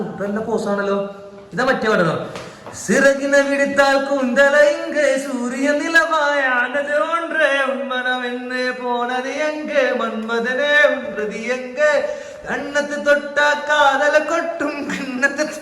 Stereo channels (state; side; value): identical; both; correlation 1.00